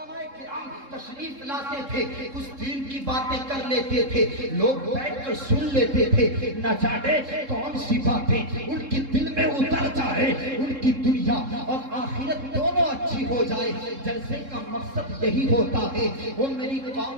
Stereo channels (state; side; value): late; left; 3.7 ms